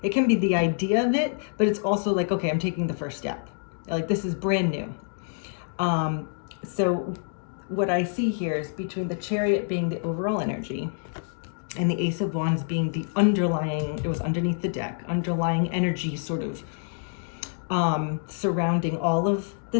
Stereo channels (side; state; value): right; silent; digital silence